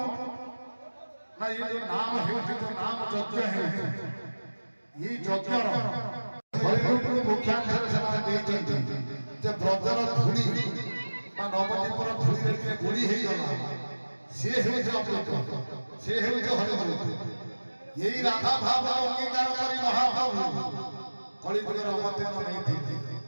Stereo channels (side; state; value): both; inverted; correlation -1.00